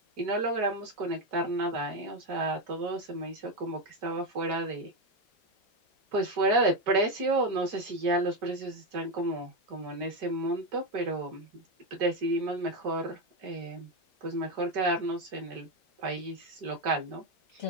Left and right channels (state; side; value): normal; both; correlation 0.09